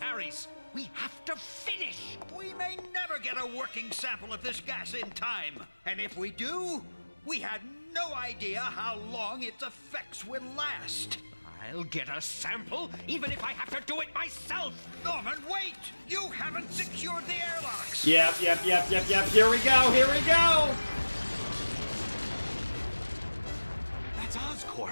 We have to finish. We may never get a working sample of this gas in time. And if we do, we had no idea how long its effects would last. I'll get a sample, even if I have to do it myself. Norman, wait! You haven't secured the airlocks. Yep. Here we go.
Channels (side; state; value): both; inverted; correlation -1.00